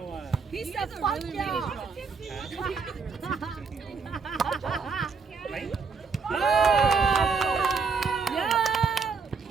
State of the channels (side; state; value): left; quieter; 5.1 dB